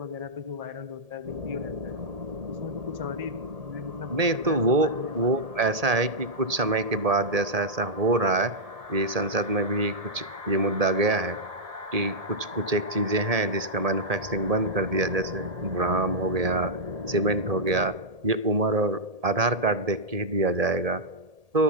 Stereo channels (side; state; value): left; late; 1.7 ms